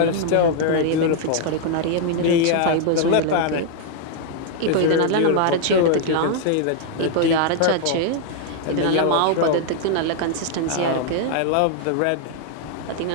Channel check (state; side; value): different; both; correlation 0.00